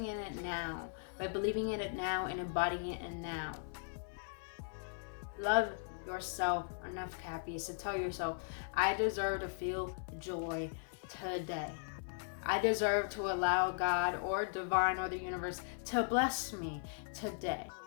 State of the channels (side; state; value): right; silent; 52 dB below the other